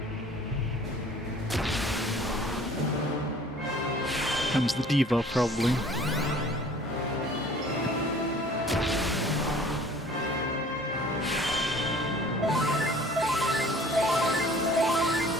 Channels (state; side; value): normal; both; correlation 0.50